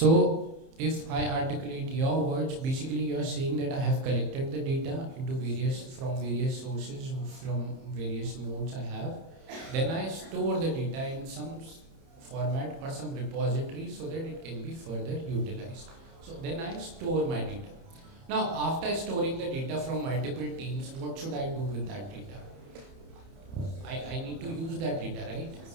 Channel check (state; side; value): late; left; 30 ms